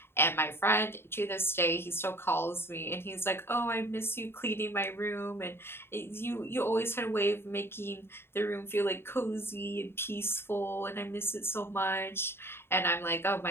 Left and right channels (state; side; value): late; right; 0.11 ms